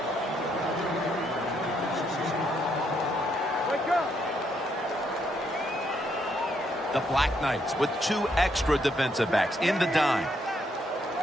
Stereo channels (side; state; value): both; normal; correlation 0.74